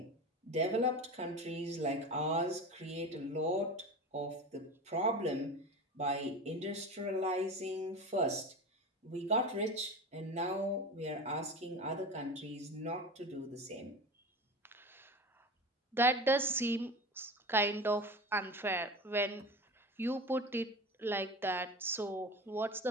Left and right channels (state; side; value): normal; both; correlation 0.30